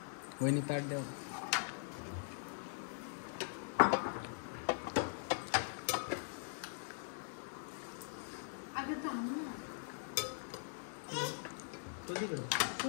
वहिनी ताट द्या.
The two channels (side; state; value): right; silent; digital silence